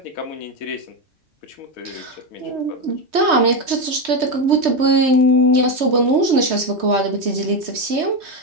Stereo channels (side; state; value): left; late; 3.2 ms